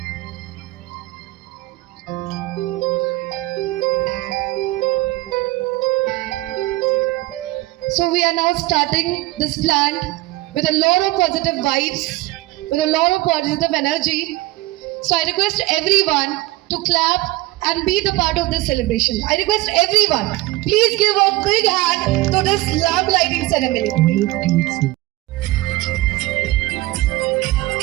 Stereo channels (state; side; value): quieter; left; 19.2 dB